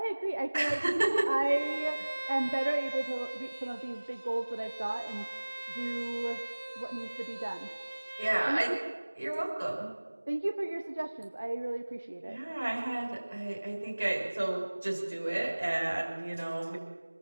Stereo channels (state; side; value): inverted; both; correlation -1.00